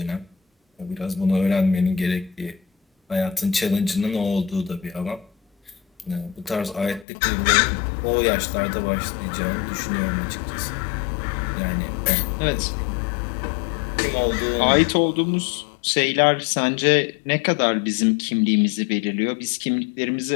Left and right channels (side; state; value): right; drops out; at 7.1 s